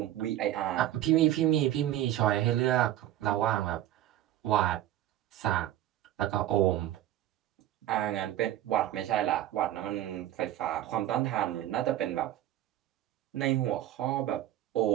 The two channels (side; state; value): left; quieter; 13.1 dB